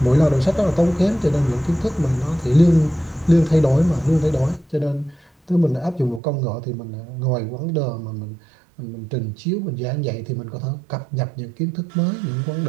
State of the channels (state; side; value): drops out; left; at 6.2 s